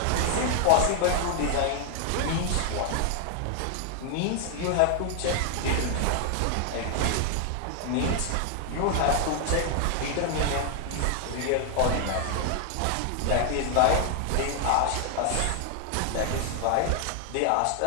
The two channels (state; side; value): different; both; correlation 0.00